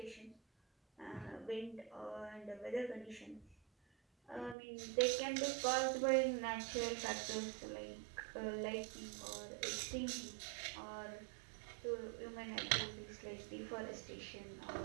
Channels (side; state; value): left; drops out; at 4.5 s